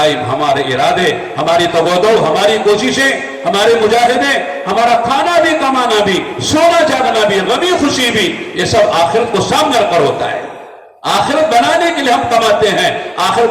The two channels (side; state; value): both; identical; correlation 1.00